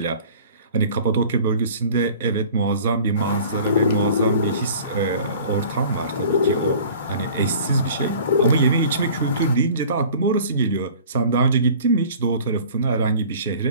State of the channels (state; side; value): inverted; both; correlation -0.46